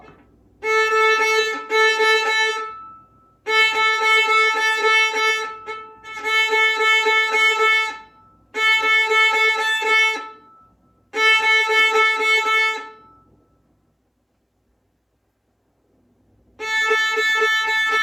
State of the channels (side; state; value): both; identical; correlation 1.00